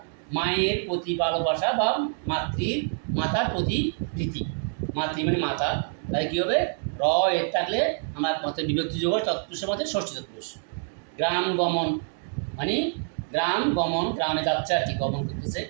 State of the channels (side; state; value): left; silent; 60 dB below the other